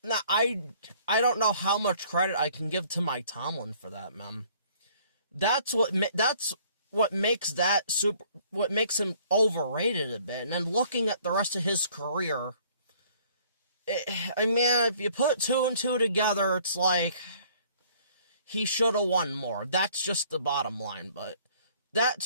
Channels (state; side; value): inverted; both; correlation -0.57